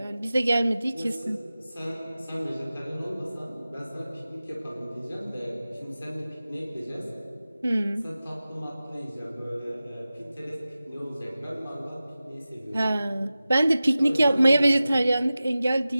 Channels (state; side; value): inverted; both; correlation -0.95